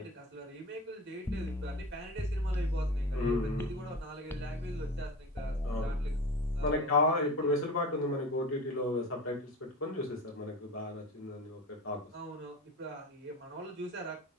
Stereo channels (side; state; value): both; normal; correlation 0.32